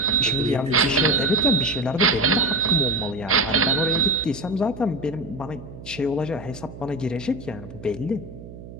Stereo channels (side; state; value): right; noise; hum, 15 dB below the sound